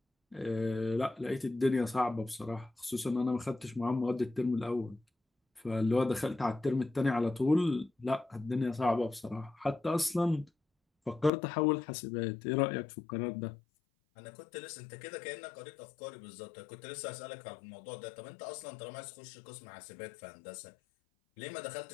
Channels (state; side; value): drops out; right; at 11.3 s